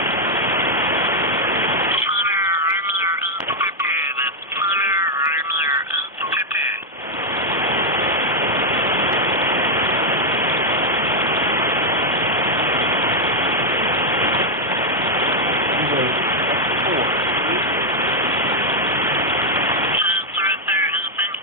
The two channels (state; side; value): normal; both; correlation 0.00